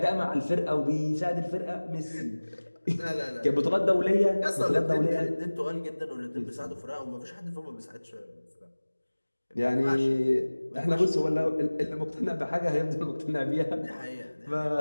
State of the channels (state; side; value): inverted; both; correlation -1.00